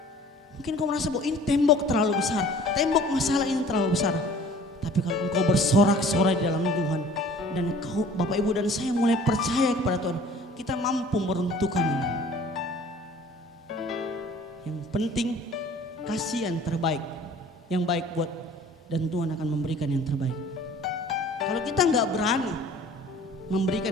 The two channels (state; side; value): normal; both; correlation 0.49